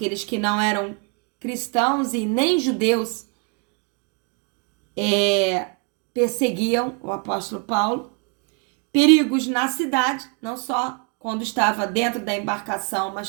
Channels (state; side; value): quieter; left; 36.0 dB